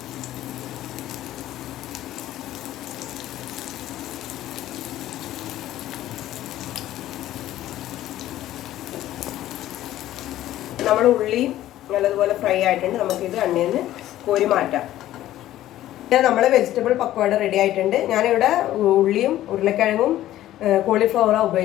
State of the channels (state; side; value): quieter; right; 13.8 dB